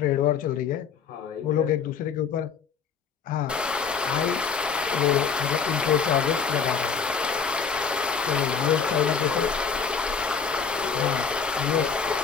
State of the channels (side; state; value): right; quieter; 6.1 dB